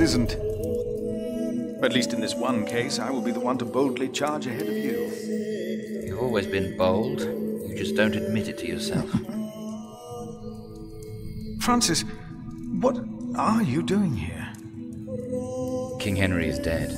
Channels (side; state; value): both; identical; correlation 1.00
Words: At least in this one case, I will be the one to boldly charge ahead of you. You've always been bold. You just don't admit it to yourself. Francis, what are you doing here? King Henry is dead.